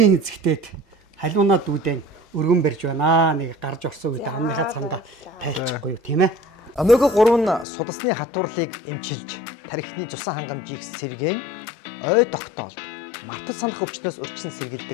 эзэгтээд халуунаа дүүдэн өргөн барьж байна. Нэг гарч орсон үед амныхаа цамдаа тайлчихгүй юу тийм ээ. Омега 3 нь судасны хатуурлыг эмчилж, тархины цусан хангамжийг сэргээн, ой тогтоолд, мартаж санах өвчнөөс урьдчилан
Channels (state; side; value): drops out; right; at 7.7 s